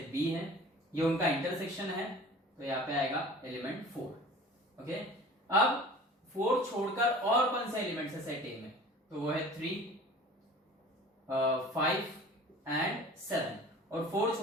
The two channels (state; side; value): normal; both; correlation 0.42